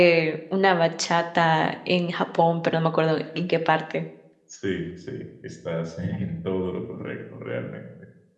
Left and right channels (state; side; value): identical; both; correlation 1.00